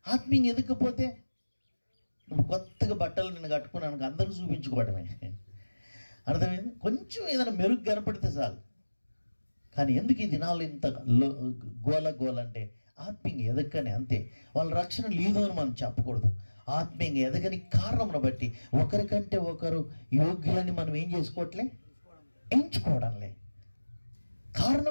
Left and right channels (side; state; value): both; inverted; correlation -1.00